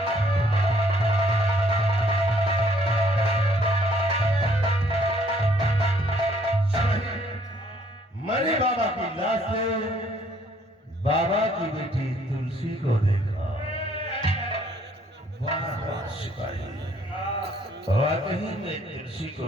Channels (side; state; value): both; normal; correlation 0.64